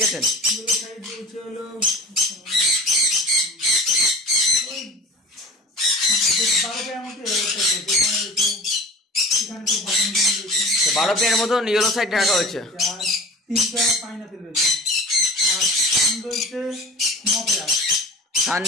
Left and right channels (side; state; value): both; normal; correlation 0.38